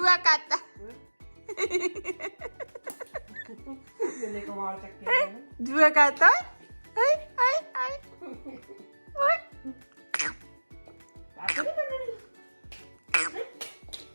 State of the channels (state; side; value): inverted; both; correlation -1.00